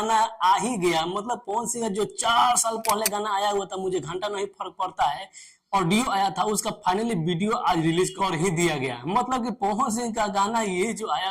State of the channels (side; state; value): both; identical; correlation 1.00